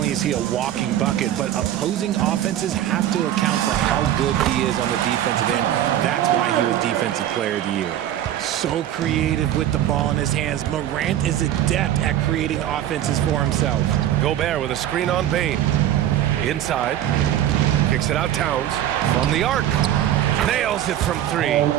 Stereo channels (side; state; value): left; quieter; 11.8 dB